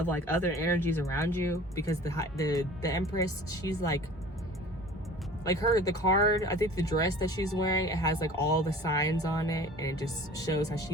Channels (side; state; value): both; normal; correlation 0.44